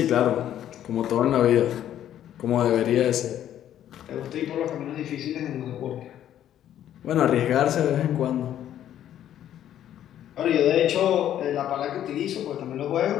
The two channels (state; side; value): quieter; right; 11.2 dB